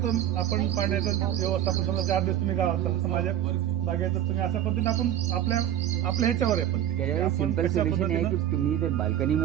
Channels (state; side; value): quieter; left; 11.2 dB